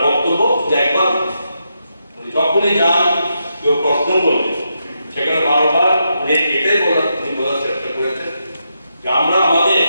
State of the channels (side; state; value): both; inverted; correlation -0.83